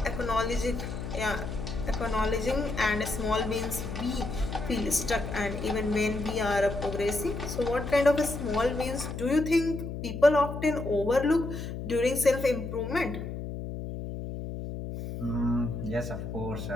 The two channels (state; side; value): noise; left; hum, 6 dB below the sound